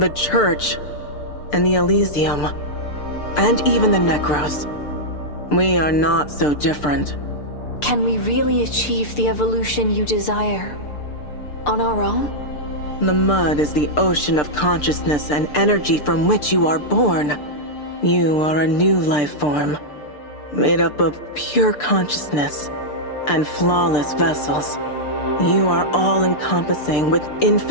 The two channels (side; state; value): right; late; 6.7 ms